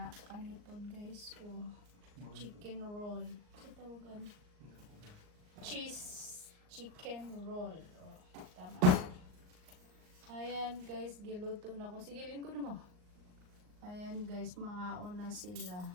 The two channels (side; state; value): left; late; 39 ms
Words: Kanipod guys. Oh. Chicken roll. Sa tawagan? Cheese chicken roll. Oh, tama. Ayan guys, giluto na ko. Sige, lingko na mo. Ayan guys, mga una sila.